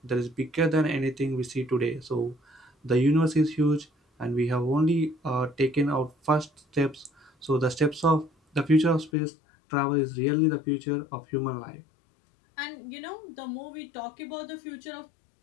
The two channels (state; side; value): drops out; right; at 9.1 s